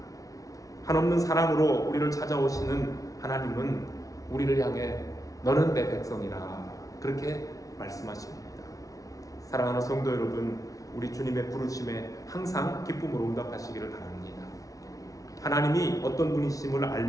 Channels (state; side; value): late; right; 0.17 ms